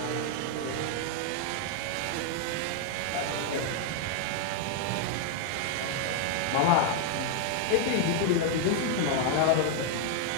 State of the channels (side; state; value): both; different; correlation 0.00